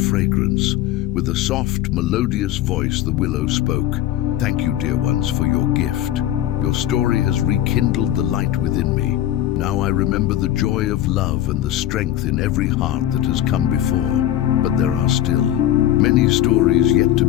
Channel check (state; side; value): quieter; right; 12.4 dB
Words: With a soft, melodious voice, the willow spoke. "Thank you, dear ones, for your gift. Your story has rekindled the light within me. Now I remember the joy of love and the strength in every heart that has come before. But there are still many stories yet to